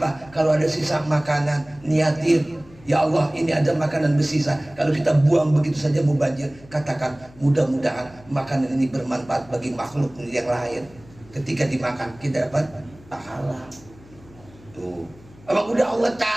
apa? Kalau ada sisa makanan, niatin, ya Allah, ini ada makanan bersisa. Kalau kita buang begitu saja mubazir, katakan mudah-mudahan makanan ini bermanfaat bagi makhluk yang lain. Ketika dimakan kita dapat pahala. Tuh, emang udah Allah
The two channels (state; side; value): noise; left; hum, 23 dB below the sound